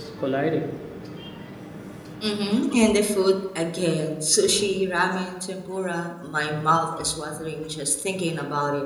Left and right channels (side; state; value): both; identical; correlation 1.00